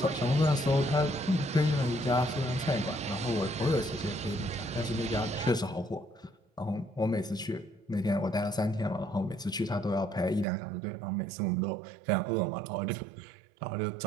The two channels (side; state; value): left; drops out; at 10.5 s